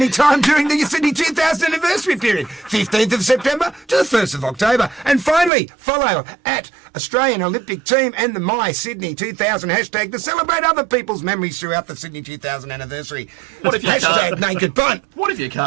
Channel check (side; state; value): left; drops out; at 5.5 s